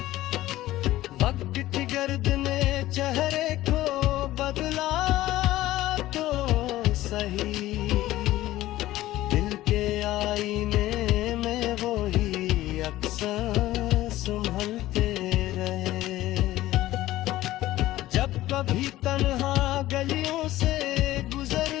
वक्त की गर्द ने चेहरे को बदला तो सही, दिल के आईने में वो ही अक्सर संभलते रहे। जब कभी तन्हा गलियों से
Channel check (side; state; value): right; quieter; 15.7 dB